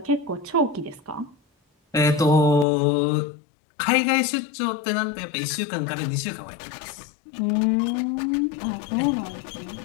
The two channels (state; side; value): drops out; right; at 2.7 s